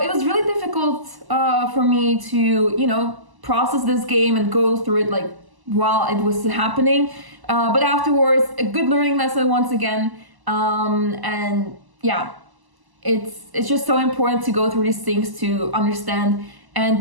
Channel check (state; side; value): late; left; 1.0 ms